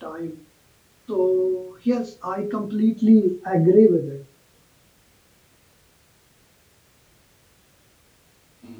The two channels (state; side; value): identical; both; correlation 1.00